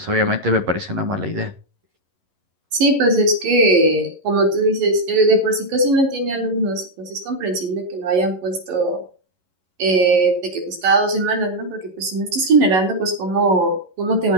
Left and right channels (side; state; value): left; late; 11 ms